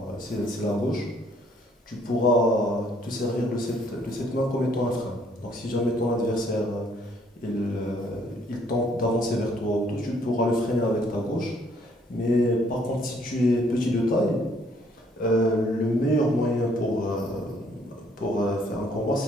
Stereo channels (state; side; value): normal; both; correlation 0.65